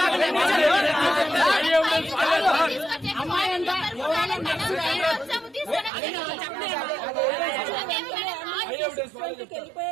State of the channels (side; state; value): left; drops out; at 5.9 s